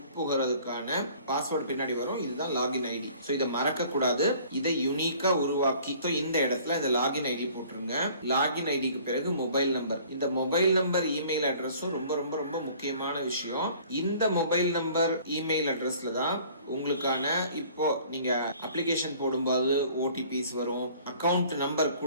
பாஸ்வேர்டு பின்னாடி வரும். இதுதான் லாகின் ஐடி. சோ இதை மறக்க கூடாது. இதை யூனிக்கா உருவாக்கி இந்த இடத்துல இந்த லாகின் ஐடி போட்டுருங்க. லாகின் ஐடிக்கு பிறகு மொபைல் நம்பர். இந்த மொபைல் நம்பர் இமெயில் அட்ரஸும் ரொம்ப ரொம்ப ரொம்ப முக்கியமான விஷயம். இந்த மொபைல் நம்பர் இமெயில் அட்ரஸ்ல தான் உங்களுக்கான இப்போ நீங்க அப்ளிகேஷன் போடும்போது ஓடிபிஸ் வரும், அக்கவுண்ட் நம்பர்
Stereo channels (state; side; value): inverted; both; correlation -0.52